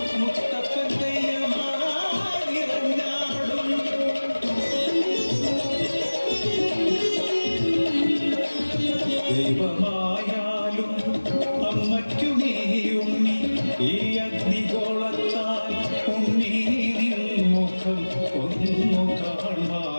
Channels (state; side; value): inverted; both; correlation -1.00